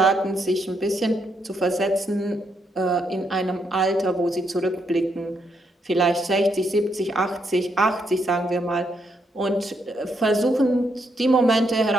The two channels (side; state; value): both; normal; correlation 0.77